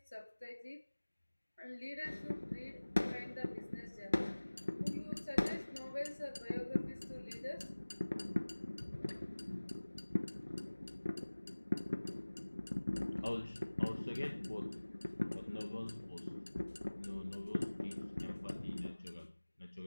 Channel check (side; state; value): both; inverted; correlation -1.00